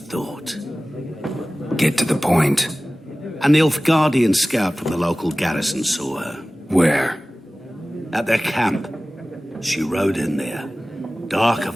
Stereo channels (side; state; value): both; normal; correlation 0.97